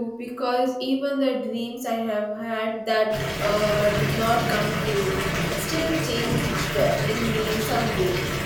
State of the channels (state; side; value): identical; both; correlation 1.00